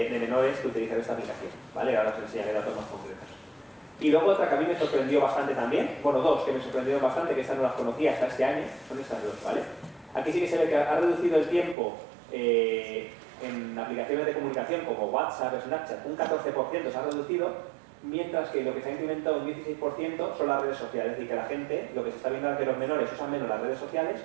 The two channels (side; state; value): left; drops out; at 11.8 s